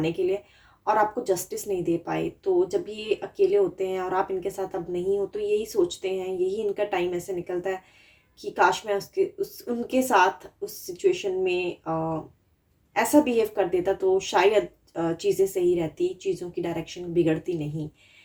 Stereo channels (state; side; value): identical; both; correlation 1.00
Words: के लिए और आपको जस्टिस नहीं दे पाए। तो जब ये अकेले होते हैं और आप इनके साथ अब नहीं हो तो यही सोचते हैं, यही इनका टाइम ऐसे निकलता है कि काश मैं उसके उस उनके साथ उस सिचुएशन में ऐसा बिहेव कर देता तो शायद चीज़ें सही रहती, चीज़ों की डायरेक्शन बिगड़ती नहीं।